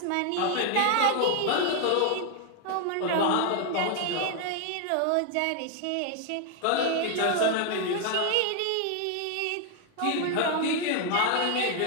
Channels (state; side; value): different; both; correlation 0.00